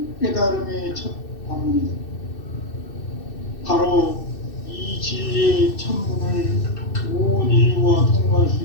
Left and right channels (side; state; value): right; late; 2.6 ms